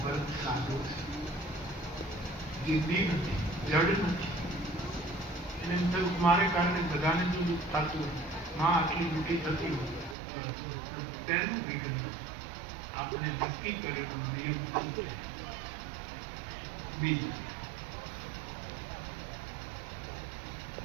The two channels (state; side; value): drops out; left; at 10.2 s